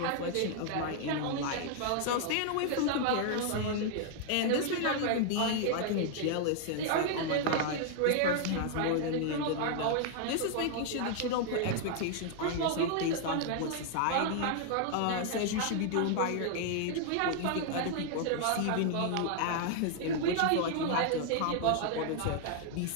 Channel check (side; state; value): both; different; correlation 0.00